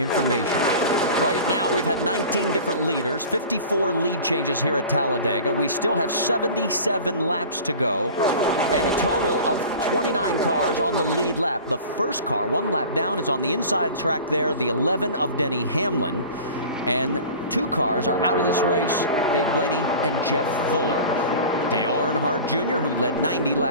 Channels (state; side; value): inverted; both; correlation -0.39